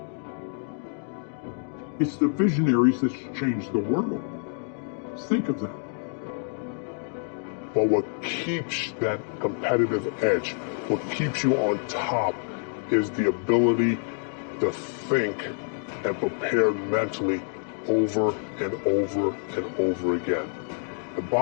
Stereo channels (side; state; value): right; silent; 56 dB below the other